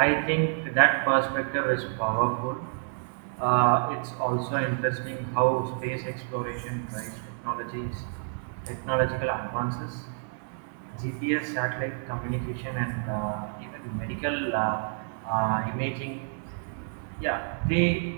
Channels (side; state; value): left; silent; digital silence